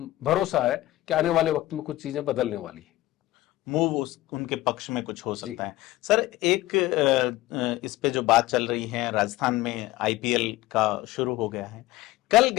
भरोसा है कि आने वाले वक्त में कुछ चीजें बदलने वाली है। मूव उनके पक्ष में कुछ हो सकता है। सर, एक इस पे जो बात चल रही है, राजस्थान में आईपीएल का शुरू हो गया है। कल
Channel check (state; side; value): quieter; right; 17.0 dB